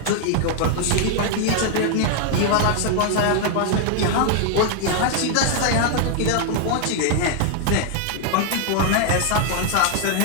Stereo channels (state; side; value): different; both; correlation 0.00